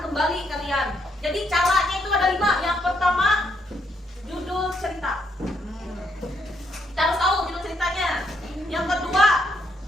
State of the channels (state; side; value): normal; both; correlation 0.75